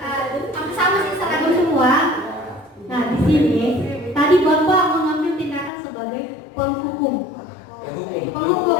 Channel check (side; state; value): right; drops out; at 5.7 s